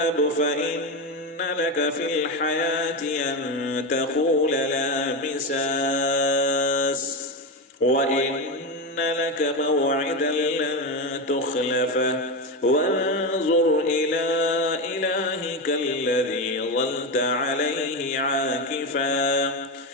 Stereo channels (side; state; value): both; normal; correlation 0.15